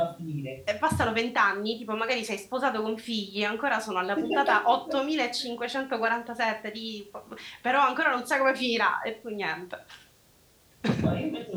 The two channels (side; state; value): both; identical; correlation 1.00